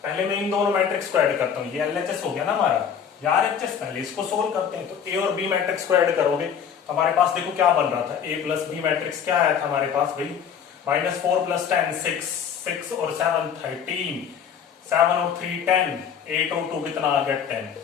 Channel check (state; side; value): quieter; right; 7.8 dB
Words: पहले मैं इन दोनों मैट्रिक्स को ऐड करता हूं, ये एलएचएस हो गया ना हमारा, यार एचएस पहले इसको सोल्व करते हैं। तो ए और बी मैट्रिक्स को ऐड करोगे तो हमारे पास देखो क्या बन रहा था, ए प्लस बी मैट्रिक्स क्या आया था हमारे पास भाई, -4 + 10 6, 6 और 7 13, 7 और 3 10, 8 और 2 कितना आ गया 10।